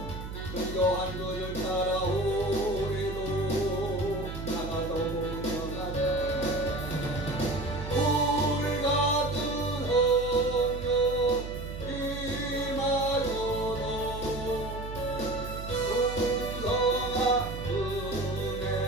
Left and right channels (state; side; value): noise; right; hum, 8 dB below the sound